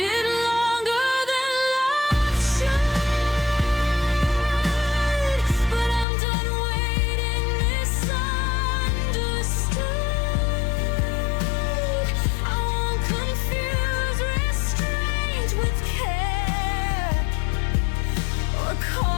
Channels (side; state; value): right; drops out; at 6.1 s